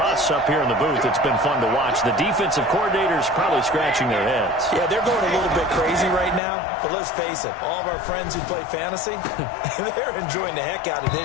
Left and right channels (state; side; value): drops out; right; at 6.4 s